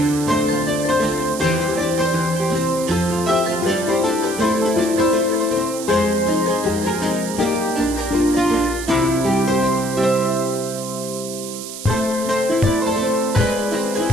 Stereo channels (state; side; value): noise; right; hiss, 10 dB below the sound